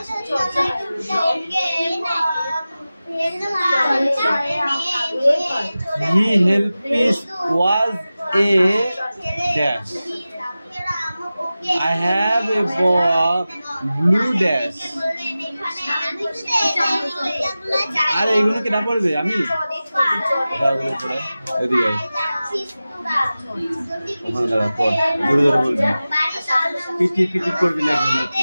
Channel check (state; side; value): inverted; both; correlation -0.96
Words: He helped was a dash. I have a ball blue dash. আরে এগুলো কি না পড়বে? আমি এদিকে ওখানে দাঁড়া, পড়, জোরে জোরে বলবি, পিটি পিটি করবি না।